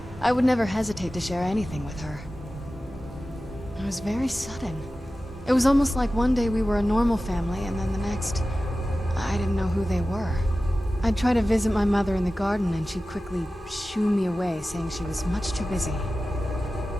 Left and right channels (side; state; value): both; normal; correlation 0.95